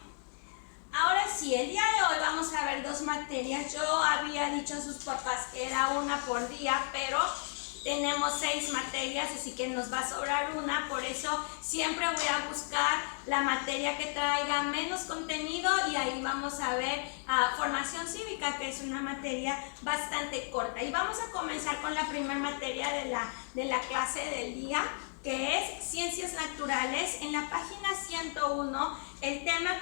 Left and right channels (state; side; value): silent; right; 55 dB below the other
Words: Ahora sí, el día de hoy vamos a ver dos materias. Yo había dicho a sus papás que era una por día, pero tenemos 6 materias, así que nos va a sobrar una. Por eso siempre voy a buscar la materia que traiga menos contenido, y ahí vamos a ver formación cívica, que es una materia bastante corta. Y vamos a comenzar con la primera materia de la clase del día, que es ciencias naturales. En la página 101, el tema